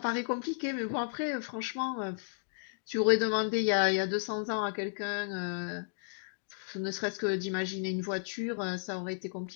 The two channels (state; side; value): silent; right; digital silence